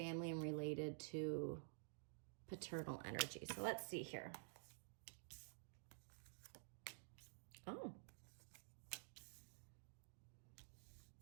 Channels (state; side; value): silent; left; digital silence